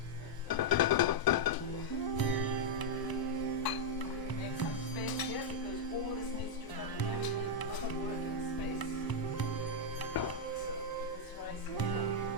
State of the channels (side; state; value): right; late; 1.0 ms